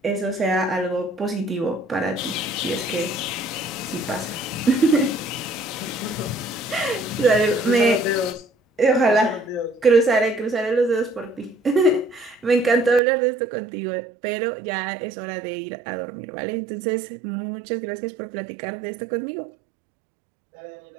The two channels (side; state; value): left; drops out; at 13.0 s